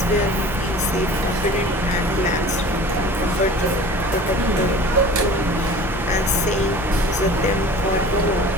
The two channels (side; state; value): both; normal; correlation 0.42